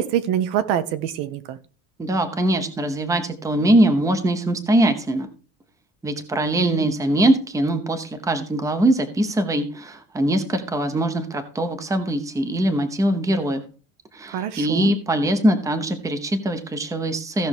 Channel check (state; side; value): normal; both; correlation 0.66